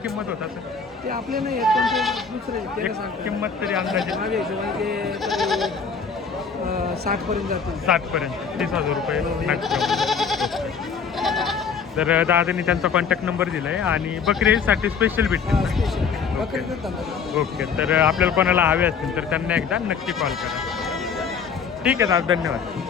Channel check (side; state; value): right; quieter; 6.0 dB